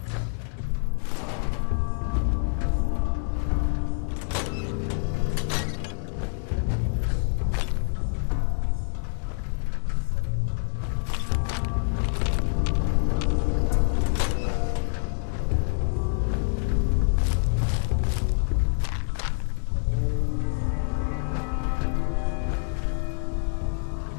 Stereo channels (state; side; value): silent; right; 56 dB below the other